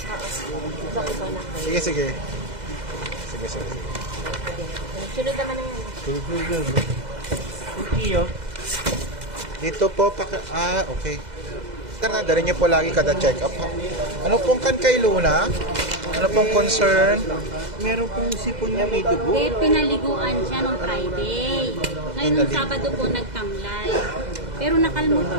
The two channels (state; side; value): late; left; 2.0 ms